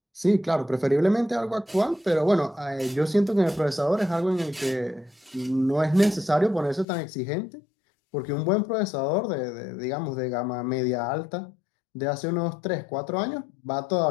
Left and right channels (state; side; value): drops out; right; at 6.9 s